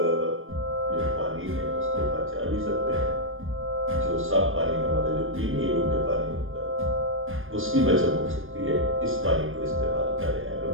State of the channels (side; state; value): left; late; 0.59 ms